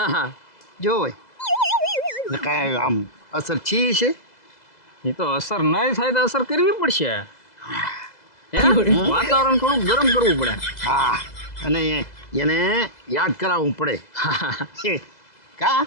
જોવે ને કાંઈ આમ અસર છી છે. એ તો અસર નહીં થાય તો અસર કરવી પડશે. વાતાવરણ થોડું ગરમ કરવું પડે. હા અને એને યાદ કરાવવું પડે. કા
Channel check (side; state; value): right; late; 2.0 ms